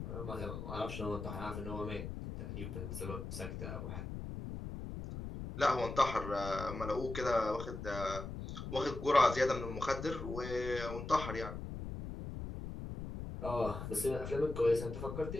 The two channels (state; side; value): noise; left; rumble, 7 dB below the sound